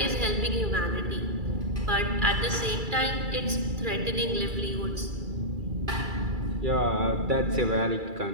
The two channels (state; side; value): late; left; 2.3 ms